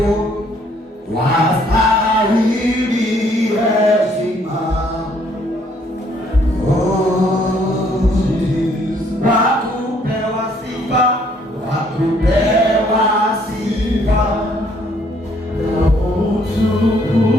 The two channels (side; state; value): both; normal; correlation 0.65